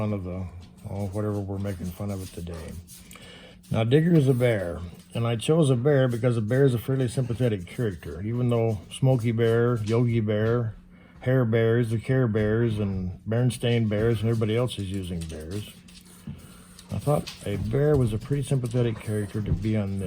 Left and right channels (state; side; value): identical; both; correlation 1.00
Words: of whatever we're making fun of it today. Now, Digger is a bear, and I chose a bear because a bear is a fairly sympathetic character. Even though Smokey Bear, Yogi Bear, Hair Bears, the Care Bears, and Berenstain Bears, and everybody else is using bears, I thought a bear was a pretty sympathetic character to be on